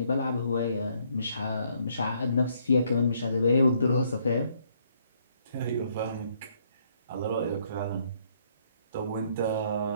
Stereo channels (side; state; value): both; inverted; correlation -0.69